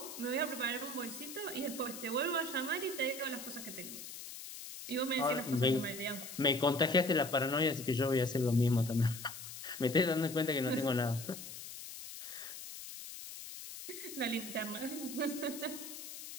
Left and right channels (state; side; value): noise; left; hiss, 11 dB below the sound